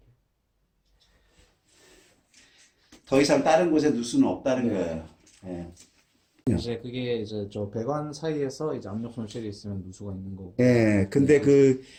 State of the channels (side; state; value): both; identical; correlation 1.00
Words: 더 이상 다른 곳에 누수는 없다는 네. 거예요. 네. 이제 그게 이제 저 배관 사이에서 이제 압력 손실이 있으면 누수가 있는 거고. 예, 근데